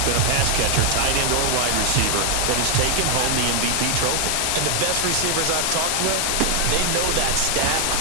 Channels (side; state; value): both; different; correlation 0.00